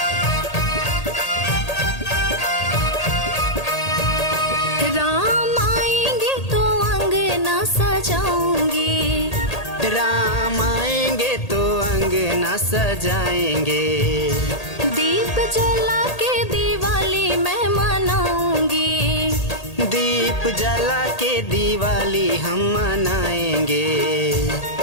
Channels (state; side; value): late; right; 1.8 ms